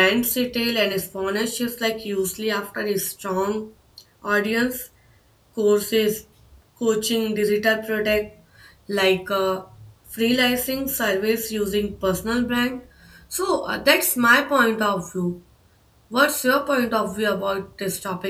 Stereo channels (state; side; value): identical; both; correlation 1.00